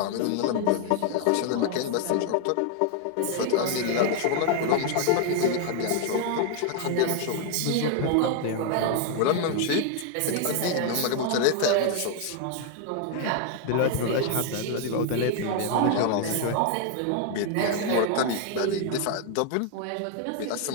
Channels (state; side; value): different; both; correlation 0.00